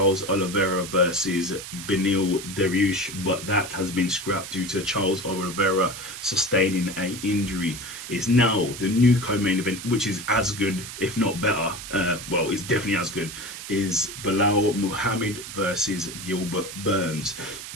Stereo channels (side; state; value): right; noise; hiss, 10 dB below the sound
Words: Oliveira versus Beneil Dariush, but that has been scrapped due to Charles Oliveira sustaining an injury. It's now the new co-main event, which is as good, if not better. Well, it's definitely as good. Is Belal Muhammad versus Gilbert Burns.